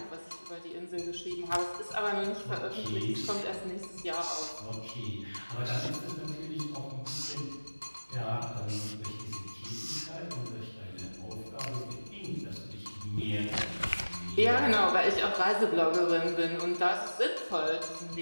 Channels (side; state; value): both; inverted; correlation -1.00